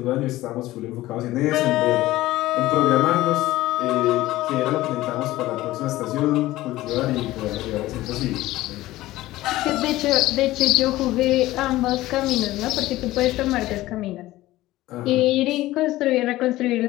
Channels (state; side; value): quieter; right; 16.8 dB